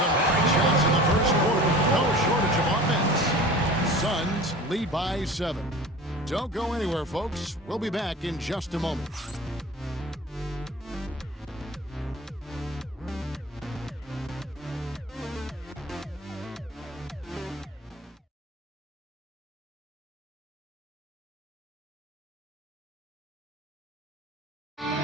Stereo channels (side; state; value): both; normal; correlation 0.39